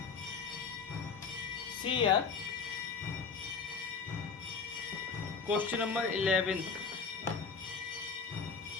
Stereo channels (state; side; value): quieter; right; 5.4 dB